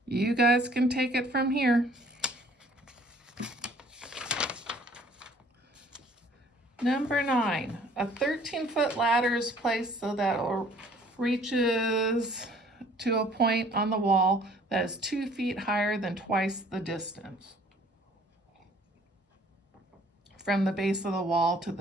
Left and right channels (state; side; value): normal; both; correlation 0.56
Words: you guys can take it from here. Number 9, a 13-foot ladder is placed so that it reaches to a point on the wall that is 2 feet higher than twice the distance from the base of the wall to